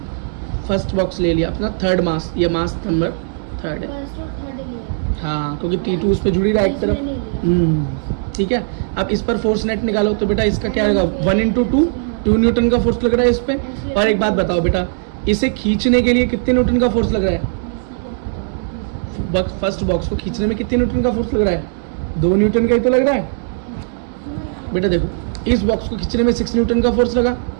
फर्स्ट बॉक्स ले लिया अपना थर्ड मास, ये मास नंबर 3 है। हाँ, क्योंकि T2 उस पर जुड़ी रहा है एक तरफ। ठीक है। अब इस पर फोर्स नेट निकालो तो बेटा इसका क्या आएगा 1 इंटू 2 न्यूटन का फोर्स लग रहा है इस पे। और एक बात बताओ बेटा, इसे खींचने के लिए कितने न्यूटन का फोर्स लग रहा है? फर्स्ट बॉक्स को खींचने में कितने न्यूटन का फोर्स लग रहा है? 2 न्यूटन का ही तो लग रहा है बेटा। देखो इस बॉक्स को खींचने में 6 न्यूटन का फोर्स लगा,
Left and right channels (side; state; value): left; silent; digital silence